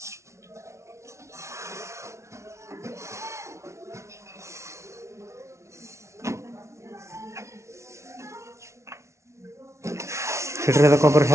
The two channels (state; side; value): late; left; 0.13 ms